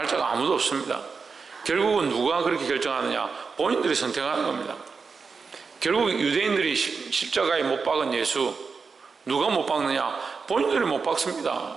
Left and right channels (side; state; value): left; quieter; 5.0 dB